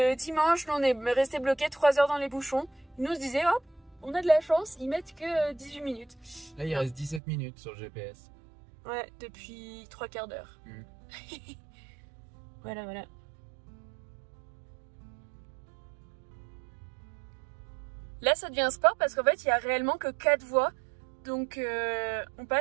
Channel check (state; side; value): drops out; left; at 7.2 s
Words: dimanche, on est resté bloqué 3 heures dans les bouchons. Ils nous disaient, hop, on a de la chance, ils mettent que 18 minutes. Là, il reste 17 minutes sur le GPS. Ouais, depuis 3/4 d'heure. Voilà. Là, ça devient sport parce qu'en fait, il n'y a réellement que 4 voies. Donc, on